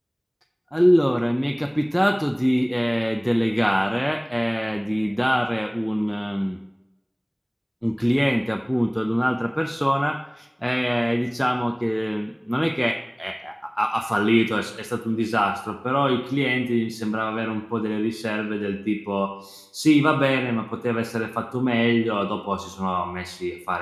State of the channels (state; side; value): identical; both; correlation 1.00